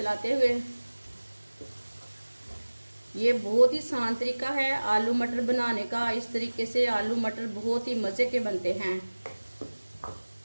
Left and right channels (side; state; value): both; inverted; correlation -1.00